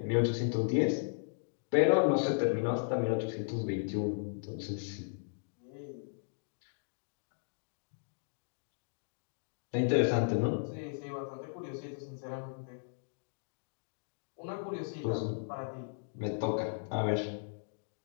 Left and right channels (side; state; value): right; silent; digital silence